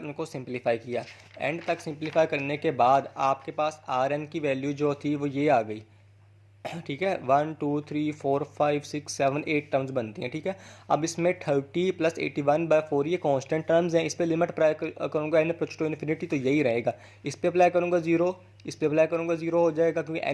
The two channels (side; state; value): both; identical; correlation 1.00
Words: उनको सिंपलीफाई किया। एंड तक सिंपलीफाई करने के बाद आपके पास Rn की वैल्यू जो थी वो ये आ गई, ठीक है। 1 2 3 4 5 6 7 8 टर्म्स बनती हैं, ठीक है। अब इसमें 30 प्लस 81/4 ये कांस्टेंट टर्म्स हैं। इस पर लिमिट अप्लाई करूँगा n अप्रोच टू इन्फिनिटी, तो यही रहेगा। इस पर अप्लाई करूँगा 0, इस पर अप्लाई करूँगा 0 हो जाएगा, क्योंकि